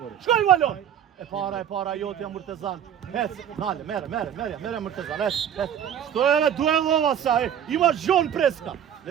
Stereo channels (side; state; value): left; quieter; 9.5 dB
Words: Shkoj Valon. E para jotja Murtezan. Hec, nale, mere Murtezan. Hec. Što je duelova sa, ima Zhon Preska.